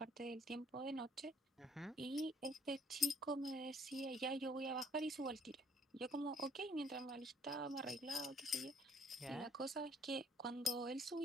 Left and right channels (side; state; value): both; normal; correlation 0.62